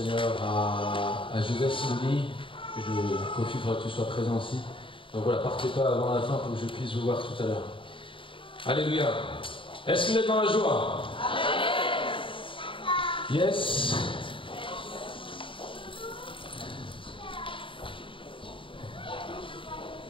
à Joseph Simouni. Kofi, il faudra que tu sois présent aussi. Donc voilà, partez pas avant la fin pour que je puisse vous voir tout à l'heure. Alléluia. Est-ce que vous êtes dans la joie? Yes.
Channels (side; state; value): right; late; 0.25 ms